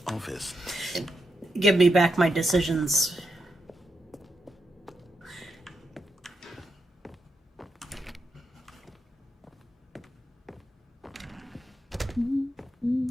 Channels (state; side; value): normal; both; correlation 0.85